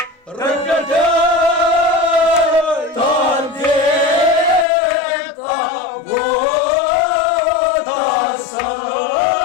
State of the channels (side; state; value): right; drops out; at 4.7 s